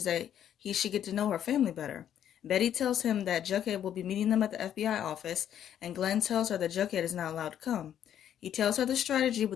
that he should get to know her family better. Betty tells him that Jughead will be meeting them at the FBI office, and Glenn tells her that Jughead is not allowed to come. He tells her the strategy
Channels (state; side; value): quieter; right; 10.1 dB